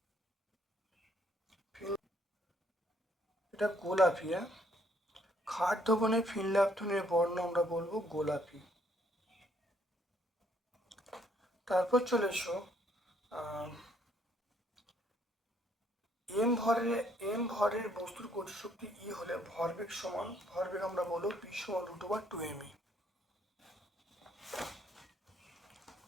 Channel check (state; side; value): normal; both; correlation 0.67